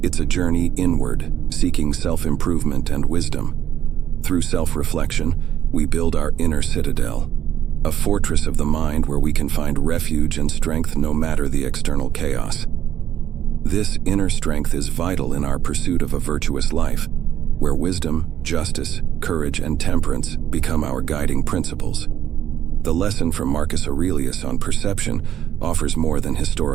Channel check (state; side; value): quieter; left; 10.6 dB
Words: It's a journey inward, seeking self-improvement and wisdom. Through self-reflection, we build our inner citadel, a fortress of the mind where we can find refuge and strength no matter the external chaos. This inner strength is vital in our pursuit of a virtuous life, where wisdom, justice, courage, and temperance become our guiding principles. The lesson from Marcus Aurelius on perception offers more than